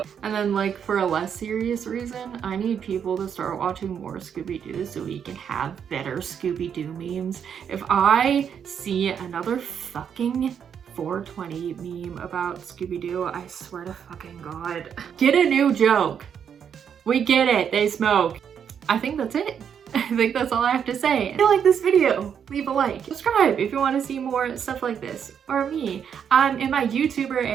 And then like for a less serious reason, I need people to start watching more Scooby-Doo so we can have better Scooby-Doo memes. If I see another fucking 420 meme about Scooby-Doo, I swear to fucking God. Get a new joke. We get it, they smoke. I think that's it. I think that's all I have to say. If you like this video, leave a like. Subscribe if you want to see more stuff like this. Or me. I'm in my YouTuber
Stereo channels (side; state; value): left; quieter; 7.9 dB